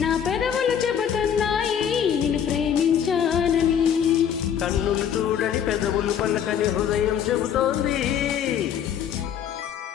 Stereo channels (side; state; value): right; quieter; 8.7 dB